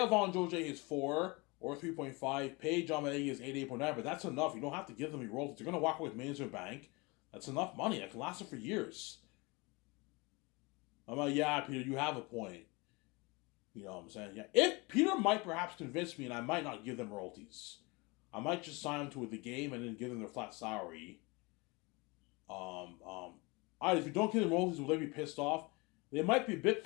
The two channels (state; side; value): quieter; right; 26.6 dB